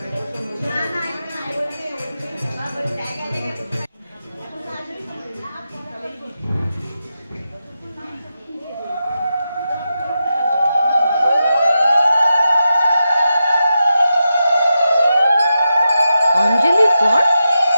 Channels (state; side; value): inverted; both; correlation -0.89